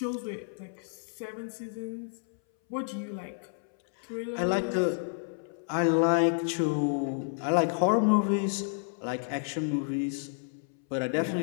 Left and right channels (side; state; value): right; silent; 58 dB below the other